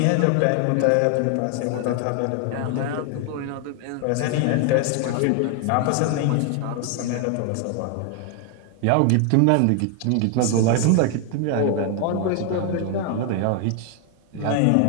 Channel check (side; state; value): both; different; correlation 0.00